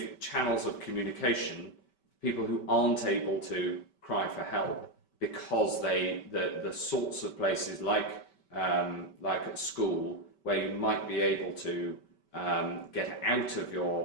channels of communication to people who aren't able to cry for help, because the sorts of places like at school, where you might be able to get out of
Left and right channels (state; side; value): late; right; 5.2 ms